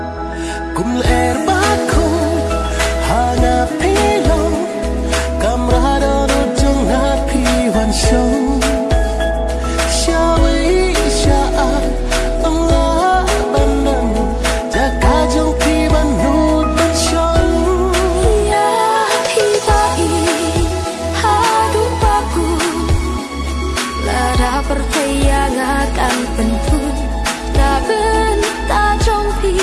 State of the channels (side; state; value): both; identical; correlation 1.00